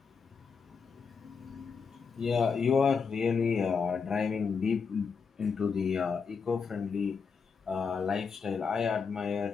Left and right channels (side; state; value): right; quieter; 5.6 dB